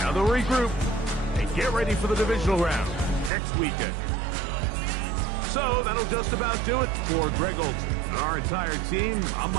they'll regroup and get ready for the divisional round next weekend. So that'll just about do it for Greg Olson. And our entire team, I'm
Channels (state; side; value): drops out; left; at 3.3 s